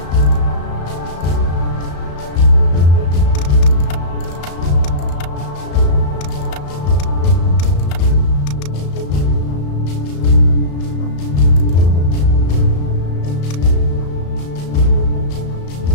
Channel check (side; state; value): right; late; 35 ms